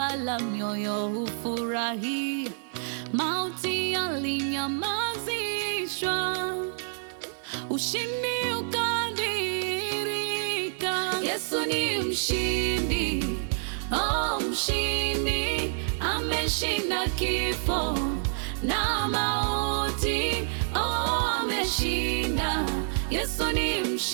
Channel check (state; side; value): silent; left; 59 dB below the other